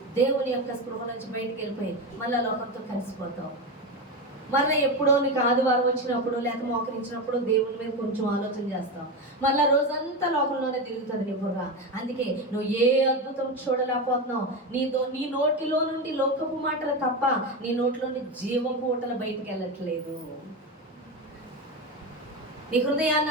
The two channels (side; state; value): both; normal; correlation 0.17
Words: దేవుని యొక్క స్పృహ నుంచి బయటికి వెళ్ళిపోయి మళ్ళీ లోకంతో కలిసిపోతావు. మళ్ళీ ఎప్పుడో నీకు ఆదివారం వచ్చినప్పుడు లేక మోకరించినప్పుడు దేవుని మీద కొంచెం ఆలోచన చేస్తావు. మళ్ళీ రోజంతా లోకంలోనే తిరుగుతుంది నీ బుర్ర. అందుకే నువ్వు ఏ అద్భుతం చూడలేకపోతున్నావు. నీ నోటిలో నుండి లోకపు మాటలు తప్ప నీ నోటిలో నుండి జీవపు ఊటలు బయటికి వెళ్ళట్లేదు. నీ హృదయాన్ని